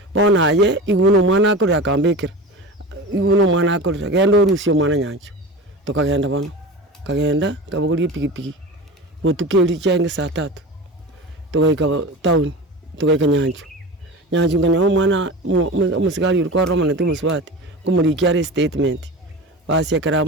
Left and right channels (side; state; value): both; normal; correlation 0.30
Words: bona ye iguno mwana akore akambekera iguno mwana akore genda orusio mwana nyancho tukagenda bono kagenda kabuguri pigipigi botukeli chenge saa 3 tugaika town tugaika nyancho nganya mwana umusigari uriko Roma na tumuswati kumurikia statement basi akara